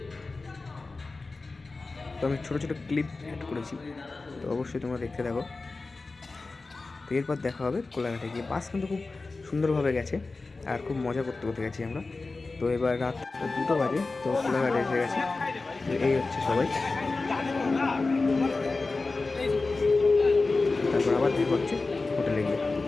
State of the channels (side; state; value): right; quieter; 3.7 dB